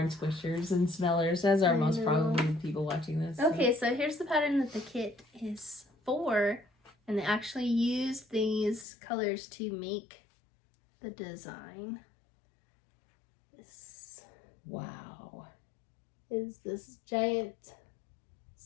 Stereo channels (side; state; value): right; drops out; at 8.8 s